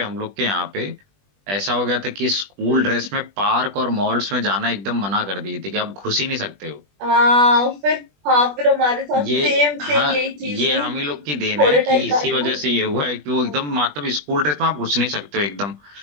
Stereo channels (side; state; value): left; late; 20 ms